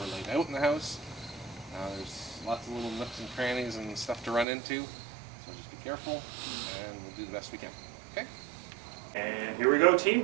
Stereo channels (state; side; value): drops out; left; at 4.5 s